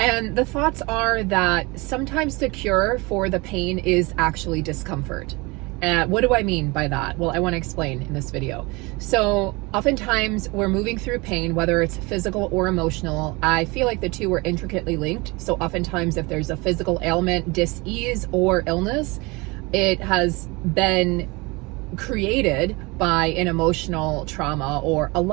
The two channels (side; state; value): left; quieter; 25.4 dB